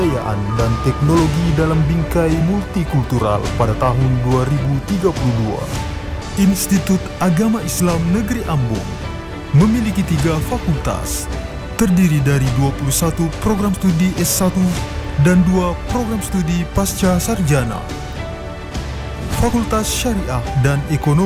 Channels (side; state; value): both; identical; correlation 1.00